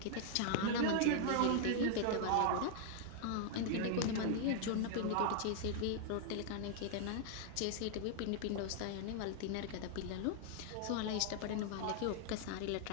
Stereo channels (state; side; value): different; both; correlation 0.00